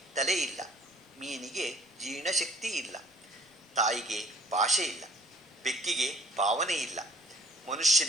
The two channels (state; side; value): normal; both; correlation 0.54